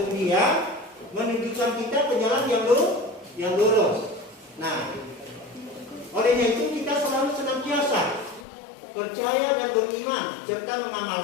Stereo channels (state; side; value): drops out; right; at 8.5 s